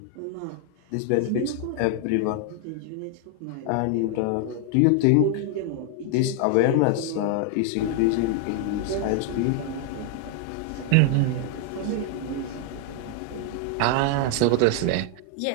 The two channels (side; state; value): both; different; correlation 0.00